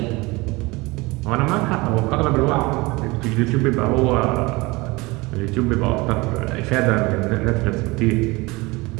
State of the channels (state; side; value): quieter; left; 23.3 dB